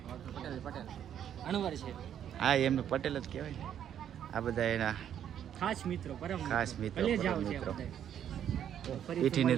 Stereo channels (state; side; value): quieter; left; 9.7 dB